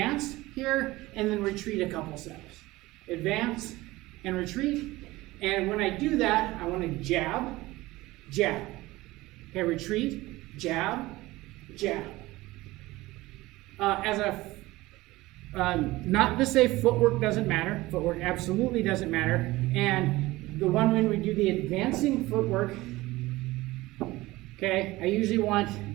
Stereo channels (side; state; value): left; quieter; 19.1 dB